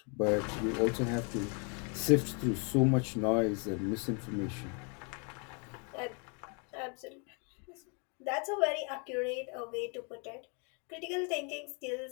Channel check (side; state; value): right; quieter; 36.1 dB